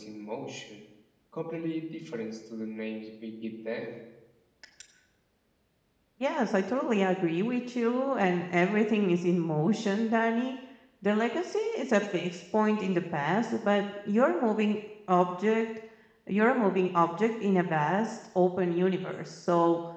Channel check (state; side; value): identical; both; correlation 1.00